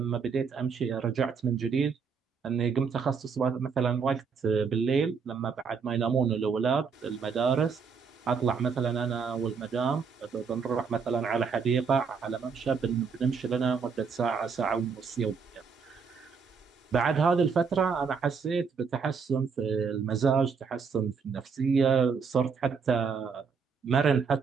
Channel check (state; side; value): quieter; left; 5.8 dB